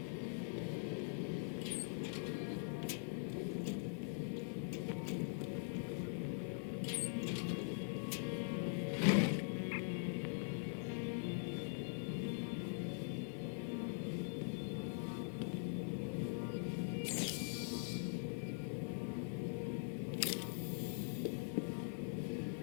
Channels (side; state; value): right; silent; digital silence